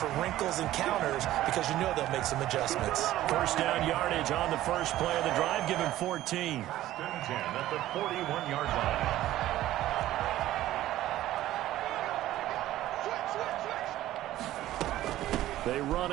for wrinkles and counters because you know they'll make some adjustments. 1st down yardage on the first play of the drive. Give him 14. 10 at the 41-yard line. They run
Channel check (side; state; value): left; quieter; 14.4 dB